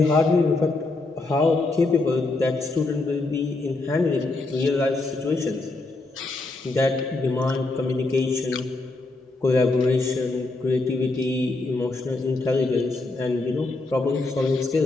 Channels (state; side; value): quieter; right; 3.2 dB